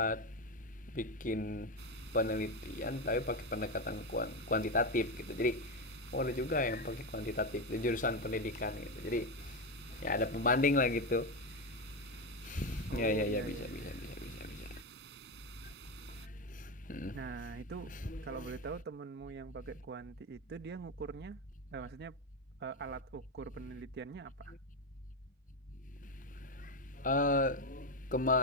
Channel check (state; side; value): normal; both; correlation 0.12